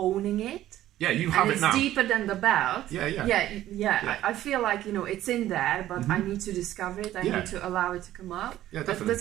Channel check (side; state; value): left; quieter; 13.6 dB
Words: it. Yeah, you have it now. It's deeper than the belt. Yeah. I feel like, it's in there, but I need to discover it. I need to allow it to come out. Yeah, definitely.